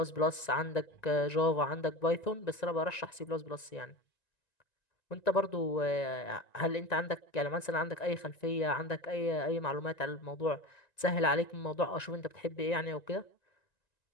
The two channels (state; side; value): late; right; 1.9 ms